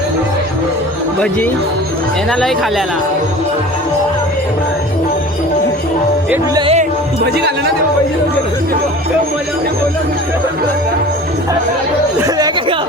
भजी येणालाही खाल्याला भजी खाल्ला ना ते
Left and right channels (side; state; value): both; normal; correlation 0.40